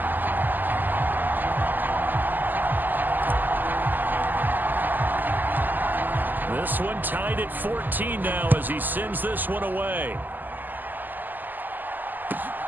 This one tied at 14 now as he sends this one away.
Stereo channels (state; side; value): late; left; 0.087 ms